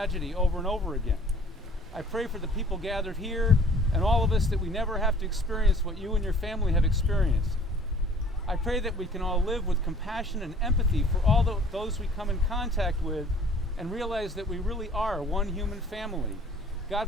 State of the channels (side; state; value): both; normal; correlation 0.53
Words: over and over again. I pray for the people gathered here and all of us that we never have to experience what you and your family have experienced. I pray that we can all live with compassion and empathy for all those we come in contact with and realize that we really are one human family.